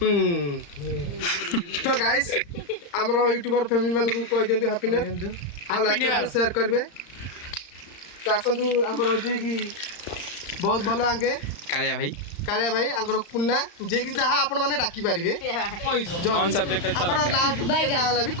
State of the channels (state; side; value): late; right; 35 ms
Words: तो गाइस हमरो यूट्यूबर फैमिली मानु को कहि देंतु हैप्पी न्यू ईयर आ लाइक कर शेयर करबे। तो आसंतु हमरो जे कि बहुत भलो आगे कालिया भाई आंकर कुन्ना जे कि जहा आपण माने डाकी पारिबे ऑन सब्जेक्ट अच्छा लगता है बाय गाला भी